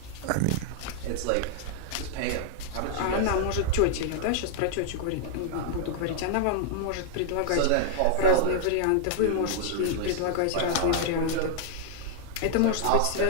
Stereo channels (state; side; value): different; both; correlation 0.00